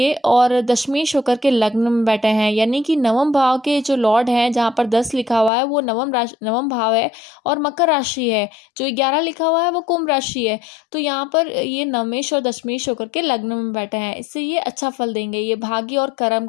और दशमेश होकर के लग्न में बैठे हैं, यानी कि नवम भाव के जो लॉर्ड हैं, जहाँ पर 10 लिखा हुआ है वो नवम भाव है और मकर राशि है। जो 11 लिखा हुआ है वो कुंभ राशि है। तो यहाँ पर ये नवमेश और दशमेश होकर के लग्न में बैठे हैं, इससे ये अच्छा फल देंगे। ये भाग्य और कर्म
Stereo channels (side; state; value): right; drops out; at 5.5 s